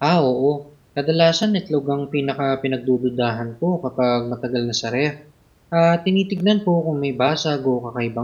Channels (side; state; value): both; identical; correlation 1.00